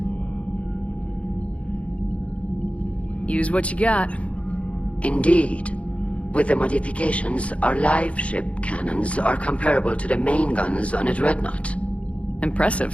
Use what you got. Indeed. With the modifications, our live ship cannons are comparable to the main guns on a dreadnought.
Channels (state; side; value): late; right; 0.063 ms